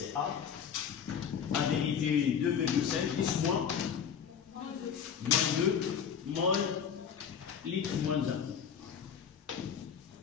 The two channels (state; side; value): quieter; right; 7.6 dB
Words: A. En vérité, 2,5, 10 moins. Moins 2, mol, litre moins 1.